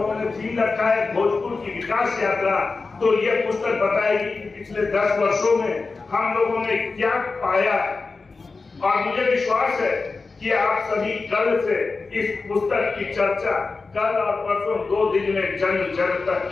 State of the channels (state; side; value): quieter; right; 4.1 dB